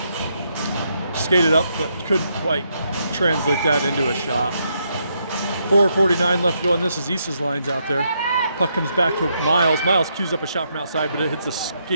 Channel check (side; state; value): both; inverted; correlation -0.77